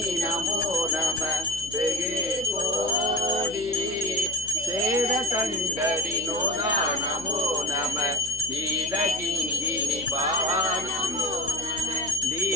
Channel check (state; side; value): noise; left; hum, 17 dB below the sound